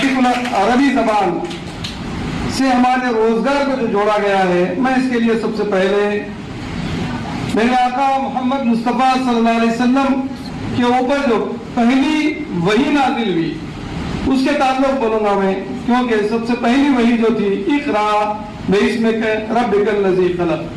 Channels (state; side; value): identical; both; correlation 1.00